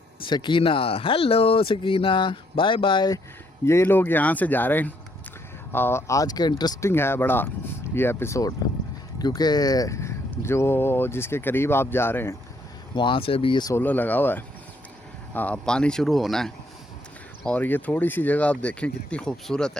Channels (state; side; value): normal; both; correlation 0.70